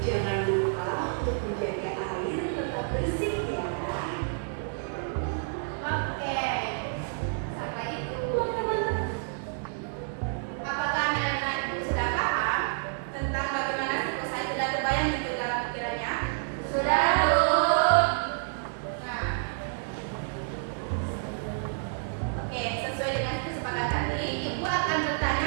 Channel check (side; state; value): left; silent; digital silence